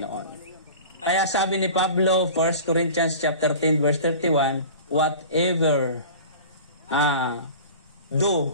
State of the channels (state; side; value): inverted; both; correlation -0.39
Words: Kaya sabi ni Pablo, 1 Corinthians chapter 10 verse 31, whatever